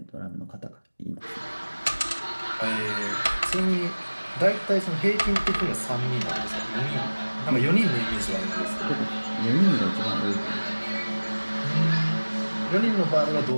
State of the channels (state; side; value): inverted; both; correlation -1.00